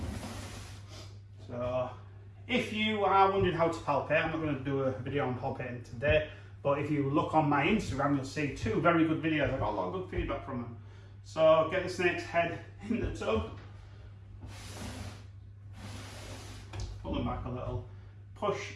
So if you are wondering how to palpate, I'm not going to do a video on palpating today, but if you look on my Instagram, you'll see 2 very good videos. I got a lot of good feedback from them. So get the snake's head in the tub. Pull them back a little.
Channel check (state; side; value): identical; both; correlation 1.00